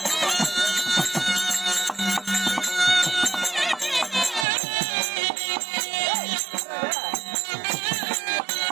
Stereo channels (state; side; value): drops out; left; at 4.5 s